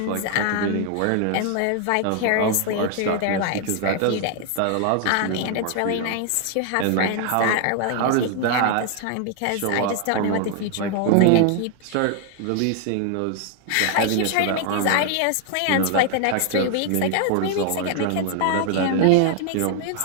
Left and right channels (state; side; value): different; both; correlation 0.00